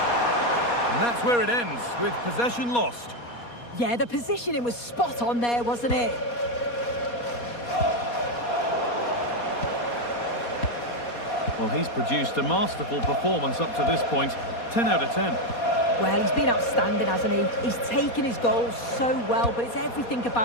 And that's where it ends, with possession lost. Yeah, the positioning was spot on there, wasn't it? Well, he's produced a masterful performance up to this point. 10 out of 10. Well, he's been outstanding, hasn't he? He's taken his goals so well, but it's everything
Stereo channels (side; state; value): right; late; 4.2 ms